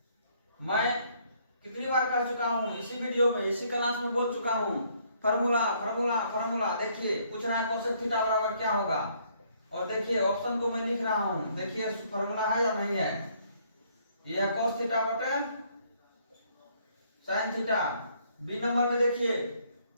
मैं कितनी बार कर चुका हूं इसी वीडियो में, इसी क्लास में बोल चुका हूं, फार्मूला फार्मूला फार्मूला। देखिए पूछ रहा है cos थीटा बराबर क्या होगा, और देखिए ऑप्शन को मैं लिख रहा हूं, देखिए फार्मूला है या नहीं है। यह cos थीटा बटे sin थीटा। बी नंबर में देखिए,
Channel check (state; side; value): inverted; both; correlation -0.66